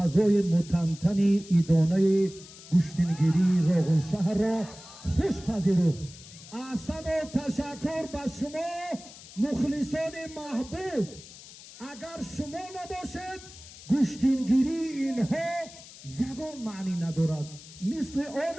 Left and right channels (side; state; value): left; noise; hiss, 18 dB below the sound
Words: متنتنی ایدانه گشتنگیری روغن شهر را خوش پذیرفت. احسن و تشکر به شما مخلصان محبوب. اگر شما نباشد گشتنگیری اینها یگان معنی ندارد. مثل